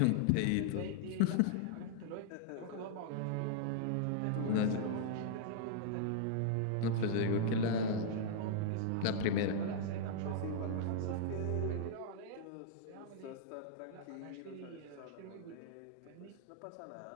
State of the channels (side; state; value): both; different; correlation -0.01